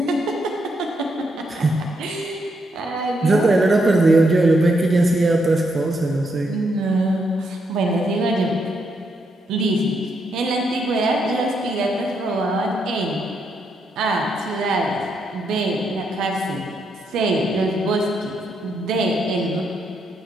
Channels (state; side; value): normal; both; correlation 0.78